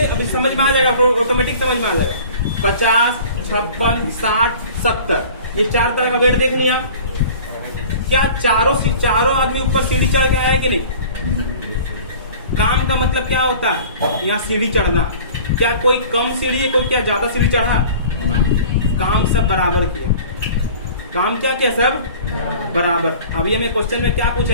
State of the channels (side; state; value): both; inverted; correlation -0.44